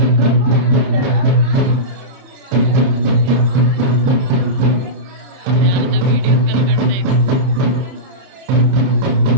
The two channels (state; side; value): late; left; 30 ms